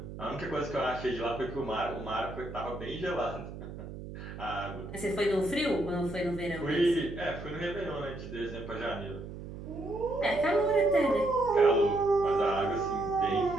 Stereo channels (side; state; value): right; noise; hum, 11 dB below the sound